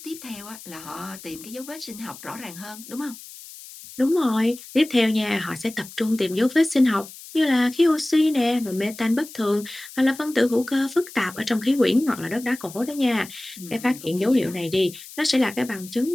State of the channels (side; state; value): left; noise; hiss, 16 dB below the sound